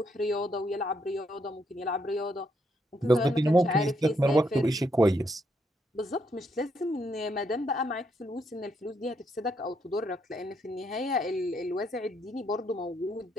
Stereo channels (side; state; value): both; normal; correlation 0.75